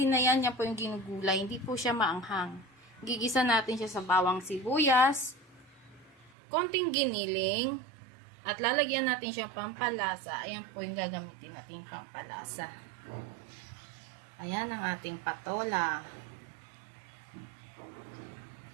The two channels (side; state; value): left; drops out; at 6.3 s